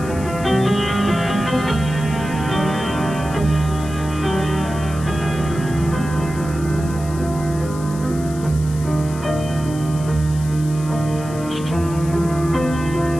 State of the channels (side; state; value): left; noise; hiss, 17 dB below the sound